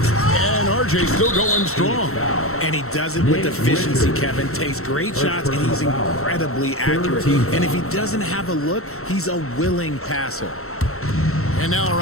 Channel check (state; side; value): late; right; 0.63 ms